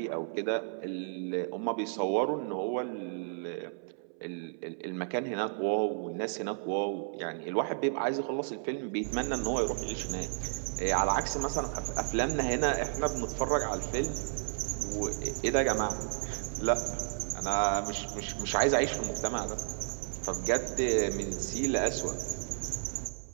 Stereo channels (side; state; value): left; silent; 56 dB below the other